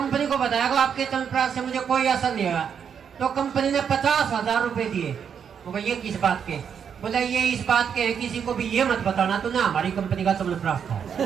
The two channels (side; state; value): left; quieter; 7.5 dB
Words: को बताया कि आपके चमनप्राश से मुझे कोई असर नहीं हुआ। तो कंपनी ने 50,000 रुपए दिए। बोला ये किस बात के? बोला ये इस बात के है, किसी को भी ये मत बताना तूने हमारी कंपनी का चमनप्राश था।